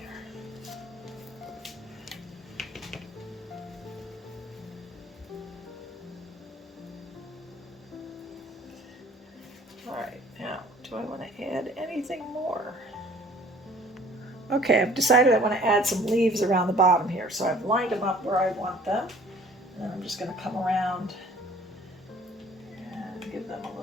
All right, now, do I want to add anything more? Okay, I've decided I want to add some leaves around the bottom here, so I've lined them up where I want them, and then I'm just going to come around and give them a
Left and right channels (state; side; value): normal; both; correlation 0.53